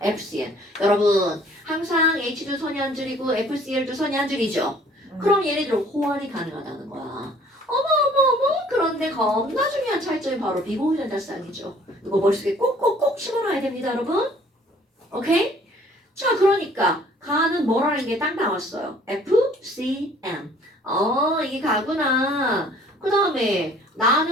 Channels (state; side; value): normal; both; correlation 0.56